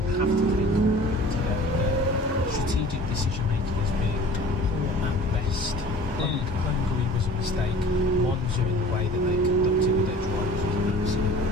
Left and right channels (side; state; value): both; normal; correlation 0.45